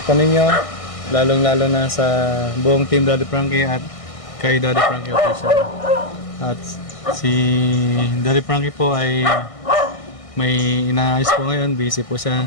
ninyo. Lalong-lalo na sa buong team Daddy Frankie at kay Daddy Frankie Official. At si Daddy Frankie po ay may inaayos po ngayon, busy po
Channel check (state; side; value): late; right; 1.6 ms